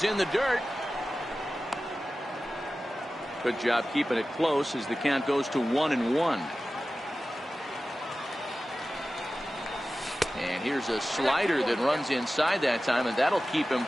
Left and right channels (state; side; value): normal; both; correlation 0.95